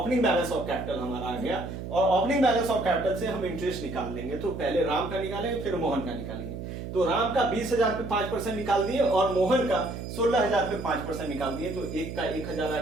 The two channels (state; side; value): noise; right; hum, 8 dB below the sound